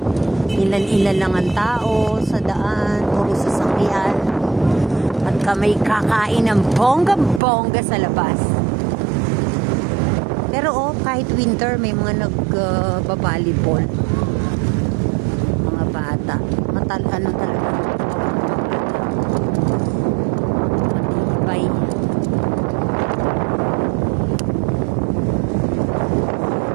Ilan-ilan lang ang tao sa daan, puro sasakyan. At kami kakain ng bongga-bongga sa labas. Pero kahit winter, may mga nag-volleyball. Mga bata. Ano talaga. Matibay.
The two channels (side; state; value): left; drops out; at 7.4 s